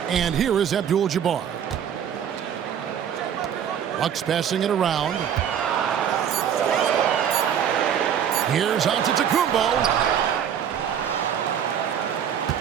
And here is Abdul-Jabbar. Bucks passing it around. Here's Antetokounmpo.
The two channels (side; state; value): left; quieter; 8.8 dB